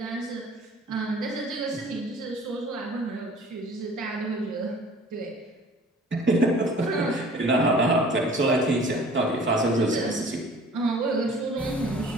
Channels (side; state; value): both; normal; correlation 0.48